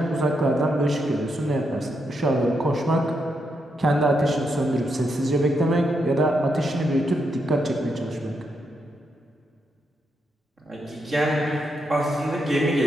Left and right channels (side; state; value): both; normal; correlation 0.81